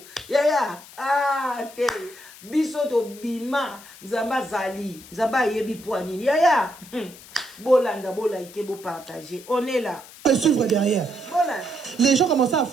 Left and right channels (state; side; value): noise; left; hiss, 19 dB below the sound